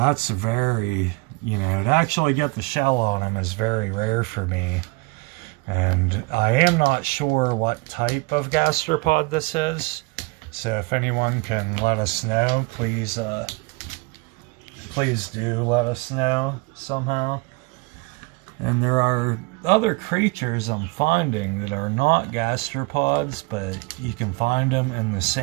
a very, to actually get the shell on them is very rare for me, and I am not sure what type of gastropod this is. So if anyone can let us know, please do let us know somehow. And there are other creatures I'm finding that are not gastropods, but you can find them in the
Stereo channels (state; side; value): quieter; left; 26.6 dB